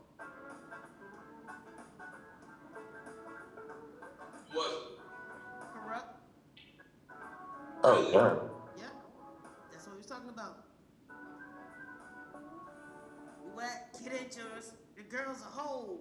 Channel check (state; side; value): identical; both; correlation 1.00